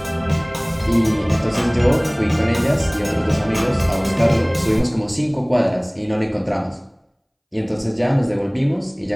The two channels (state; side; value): identical; both; correlation 1.00